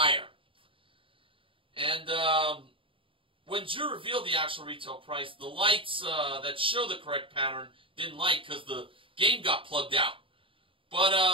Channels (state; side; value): late; left; 0.25 ms